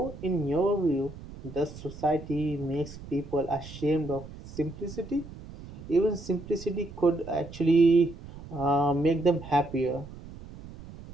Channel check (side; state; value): right; noise; rumble, 15 dB below the sound